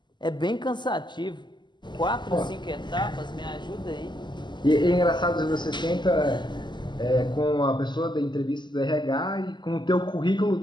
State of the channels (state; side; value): late; right; 0.21 ms